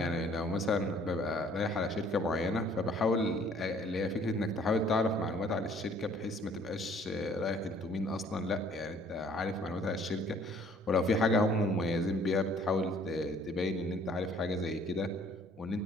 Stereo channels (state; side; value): normal; both; correlation 0.58